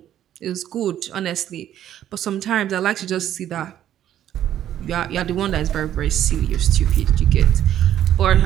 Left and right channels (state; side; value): quieter; left; 11.3 dB